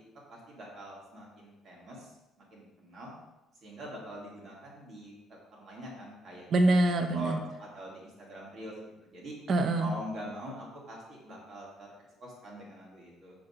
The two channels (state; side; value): normal; both; correlation 0.80